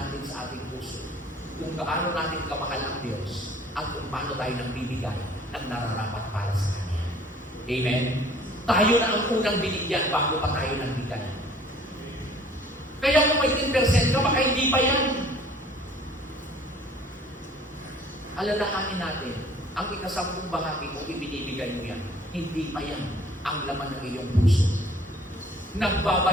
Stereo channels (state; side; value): normal; both; correlation 0.53